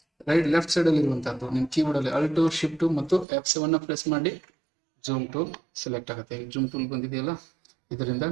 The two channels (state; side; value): drops out; left; at 3.2 s